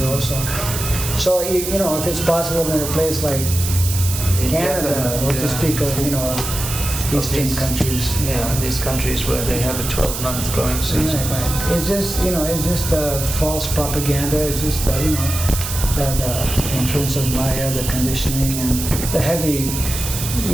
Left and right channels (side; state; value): right; noise; hiss, 5 dB below the sound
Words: also. So you know, if it's possible in a place like Canada, or to speak of, you know, Eastern countries. Yeah, these countries where they have a 12-month growing season. Right. It's just, you know, it's just false propaganda. It's just, you know, that influence of Maya, the conditioning, and the heavy,